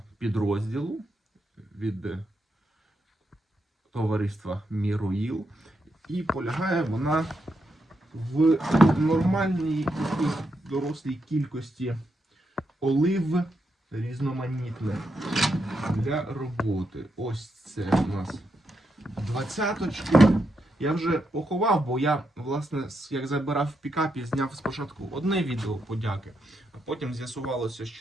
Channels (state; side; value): normal; both; correlation 0.82